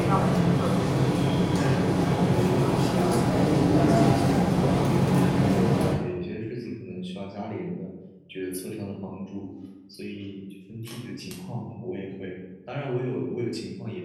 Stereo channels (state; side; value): identical; both; correlation 1.00